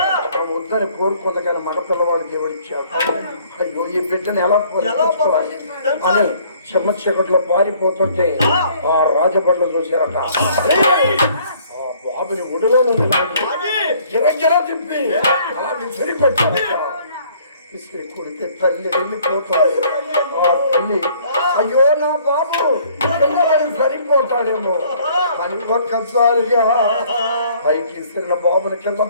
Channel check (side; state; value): both; inverted; correlation -0.59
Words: వద్దని కోరుకుంది కానీ మగ పిల్లవాడు దేవుడు ఇచ్చాడు. అయ్యో ఈ బిడ్డను ఎలా పోషించుకోవాలి అని చెమ్మ చీకట్లో పారిపోతుంటే ఆ రాజబడ్లు చూశారట. ఆ బాబుని ఒడిలో గిరగిర తిప్పి అలా సరిపెట్టారట. విసిరి కొడితే తల్లి వెళ్ళిపోతుంది. ఆ తల్లి అయ్యో నా బాబు పిల్లవాడు సరిపోతాడేమో అని ఒక్కసారిగా పైకి ఇస్తున్న బాబుని కింద